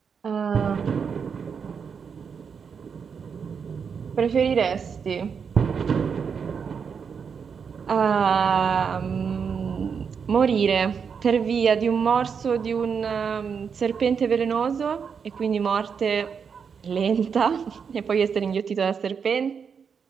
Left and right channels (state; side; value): quieter; left; 6.4 dB